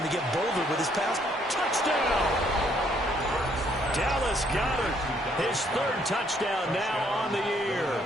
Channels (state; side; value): normal; both; correlation 0.68